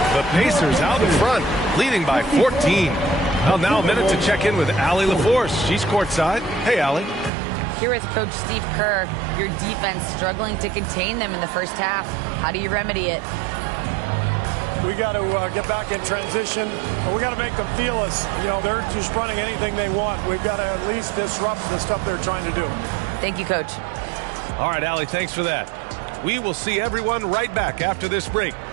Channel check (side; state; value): left; drops out; at 7.3 s